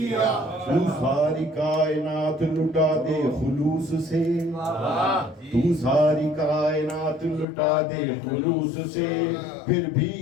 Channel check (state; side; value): drops out; right; at 7.5 s